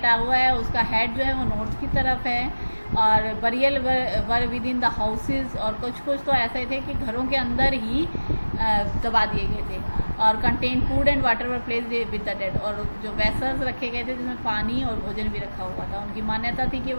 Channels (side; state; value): both; inverted; correlation -1.00